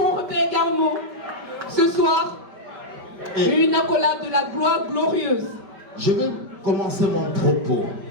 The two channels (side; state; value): left; late; 5.1 ms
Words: Garmot, ce soir, une accolade de la gloire glorieuse. Je vais commencer mon propos